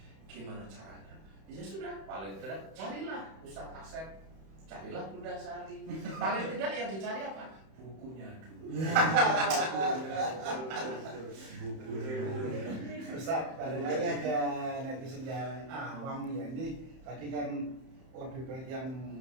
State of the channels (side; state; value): left; late; 31 ms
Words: gimana caranya? Ya sudah, paling tidak carilah Ustadz Asep, carilah Bunda Sari. Paling tidak yang dicari apa? Bukunya dulu. Ustaz, balik lagi ada netizen yang awam ya. Ini tadi kan lebih baik yang